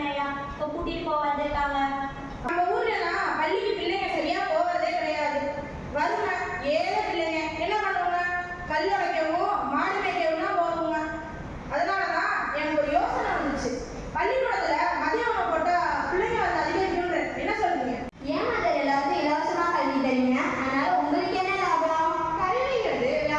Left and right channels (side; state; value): both; identical; correlation 1.00